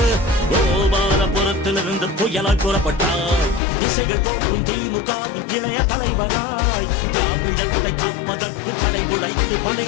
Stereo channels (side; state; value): right; drops out; at 3.6 s